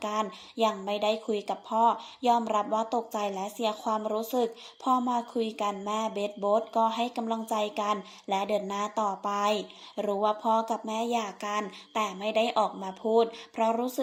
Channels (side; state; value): both; identical; correlation 1.00